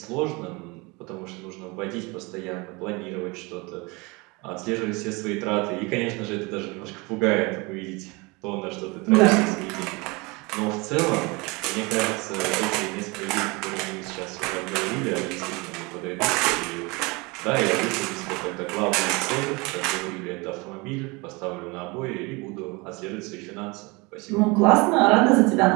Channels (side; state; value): left; quieter; 26.3 dB